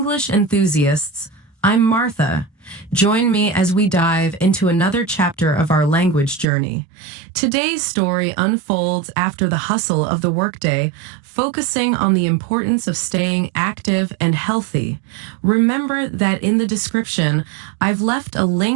enthusiasts. I'm Martha. Join me as we dive into another chapter of our language journey. Today's story unfolds after the hustle of the workday, focusing on the importance of staying active and healthy. Remember that in the description, I've left a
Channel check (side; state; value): left; drops out; at 6.5 s